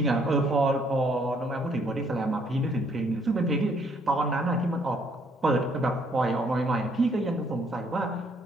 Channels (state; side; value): normal; both; correlation 0.67